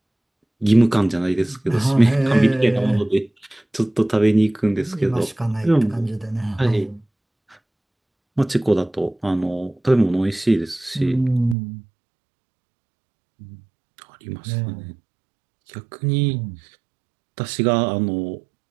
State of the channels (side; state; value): left; drops out; at 11.6 s